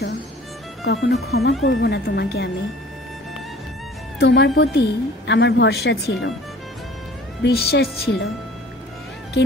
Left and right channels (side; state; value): both; normal; correlation 0.49